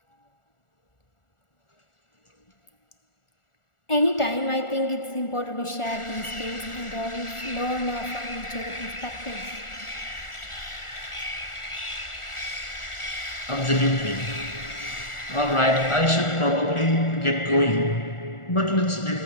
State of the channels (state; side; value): late; right; 1.4 ms